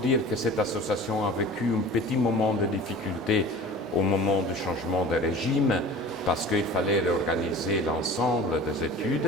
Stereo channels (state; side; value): normal; both; correlation 0.40